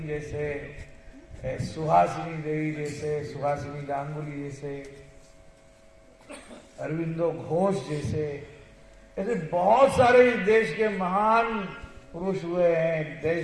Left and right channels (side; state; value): both; identical; correlation 1.00